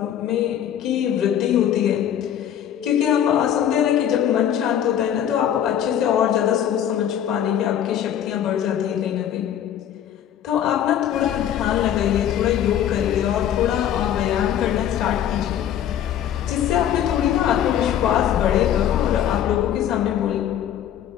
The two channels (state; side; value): quieter; right; 10.1 dB